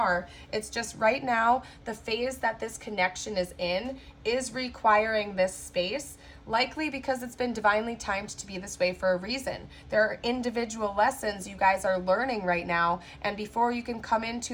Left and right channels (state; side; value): identical; both; correlation 1.00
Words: It's just right now, the phase that this connection is in is requiring this space, likely because it's been divinely timed to be this way for a reason. There are individual lessons you guys are learning right now, and before you can come